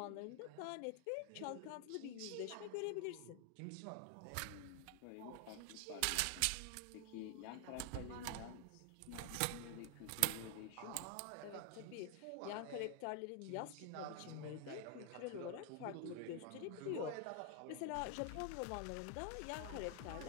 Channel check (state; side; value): different; both; correlation 0.00